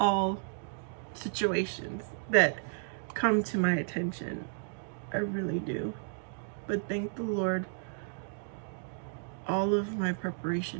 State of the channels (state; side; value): silent; left; digital silence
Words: situations that come to my attention. I really do. But thank the Lord, all of my